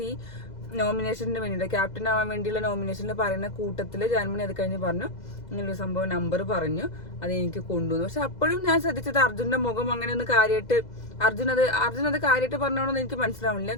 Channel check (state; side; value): late; right; 2.0 ms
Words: നോമിനേഷന് വേണ്ടിയിട്ട്, ക്യാപ്റ്റൻ ആവാൻ വേണ്ടിയുള്ള നോമിനേഷനിൽ പറയുന്ന കൂട്ടത്തില് ജാൻമണി അത് കഴിഞ്ഞ് പറഞ്ഞു ഇങ്ങനൊരു സംഭവം നമ്പർ പറഞ്ഞു, അത് എനിക്ക് കൊണ്ടുവന്നു. പക്ഷെ അപ്പോഴും ഞാൻ ശ്രദ്ധിച്ചത് അർജുന്റെ മുഖം അങ്ങനെ ഒന്ന് കാര്യമായിട്ട് അർജുൻ അത് കാര്യമായിട്ട് പറഞ്ഞോണെന്ന് എനിക്ക് മനസ്സിലാവില്ല.